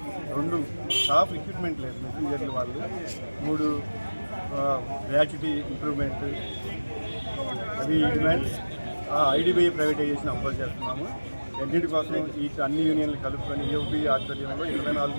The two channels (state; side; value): inverted; both; correlation -1.00